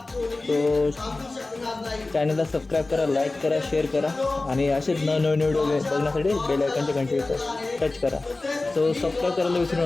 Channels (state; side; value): quieter; right; 3.2 dB